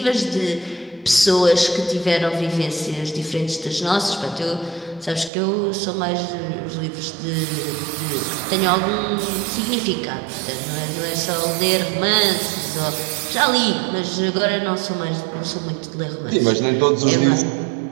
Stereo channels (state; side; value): drops out; left; at 5.3 s